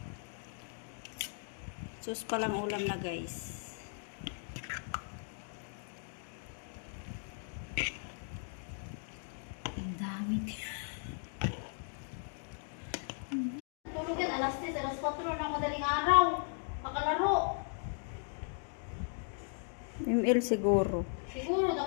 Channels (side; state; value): right; silent; 53 dB below the other